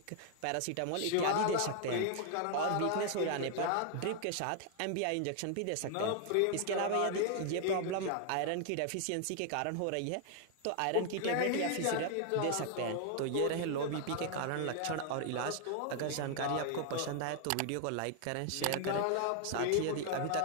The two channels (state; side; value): different; both; correlation 0.00